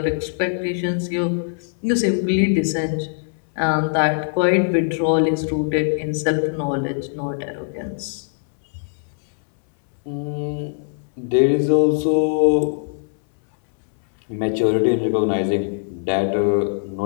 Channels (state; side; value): silent; right; 63 dB below the other